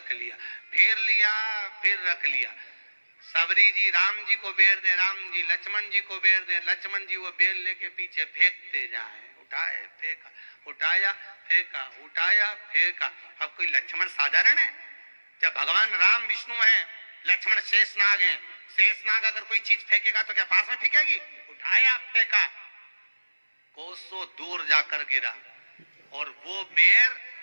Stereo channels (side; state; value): both; inverted; correlation -1.00